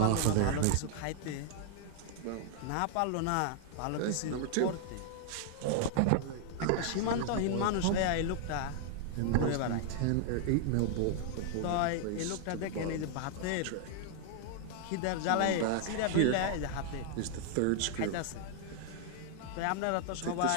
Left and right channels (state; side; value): different; both; correlation 0.00